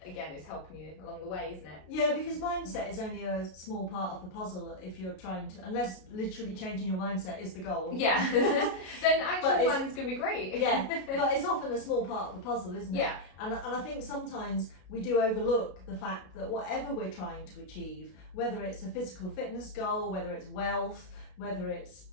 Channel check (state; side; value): late; right; 33 ms